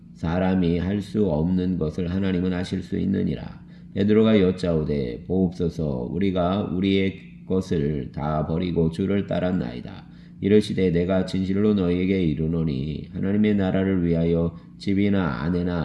사람이 할 수 없는 것을 하나님은 하실 수 있느니라. 베드로가 여짜오되 보옵소서 우리가 우리의 것을 다 버리고 주를 따랐나이다. 이르시되 내가 진실로 너희에게 이르노니 하나님의 나라를 위하여 집이나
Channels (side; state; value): both; identical; correlation 1.00